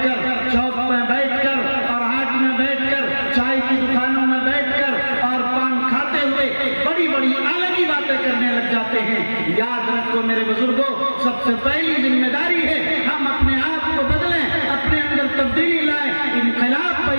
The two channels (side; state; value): both; inverted; correlation -1.00